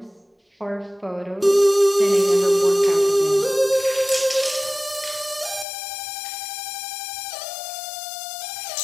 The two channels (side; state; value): right; drops out; at 5.7 s